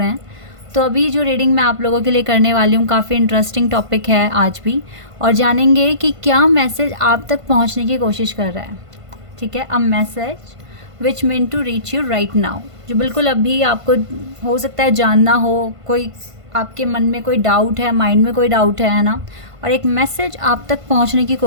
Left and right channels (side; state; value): left; late; 1.5 ms